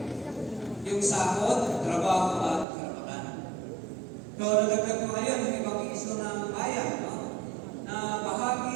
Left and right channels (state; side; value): drops out; left; at 2.7 s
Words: yung sahod, trabaho at karapatan. So, nadagdag ko ngayon yung ibang issue ng bayan, no, na